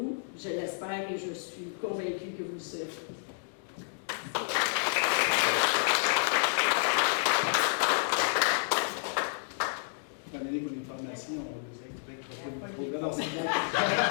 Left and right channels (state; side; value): silent; right; digital silence